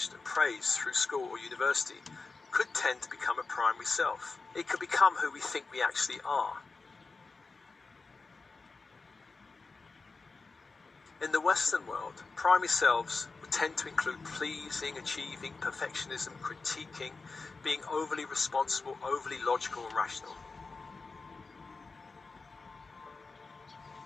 and praised through school or university could tend to become a primary self. It could become who we think we actually are. In the Western world, primary selves would tend to include pleasing, achieving, perfectionism, critiquing, being overly responsible, overly logical and rational.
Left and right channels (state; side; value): quieter; right; 4.1 dB